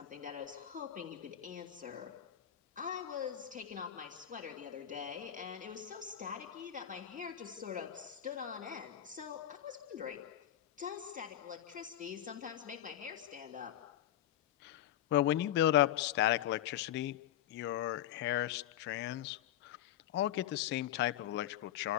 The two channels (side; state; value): right; quieter; 11.8 dB